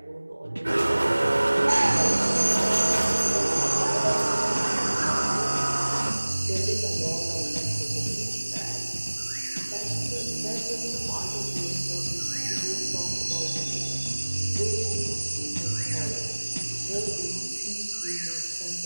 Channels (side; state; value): both; inverted; correlation -1.00